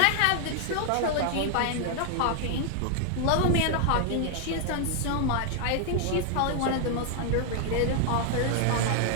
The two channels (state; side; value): different; both; correlation 0.00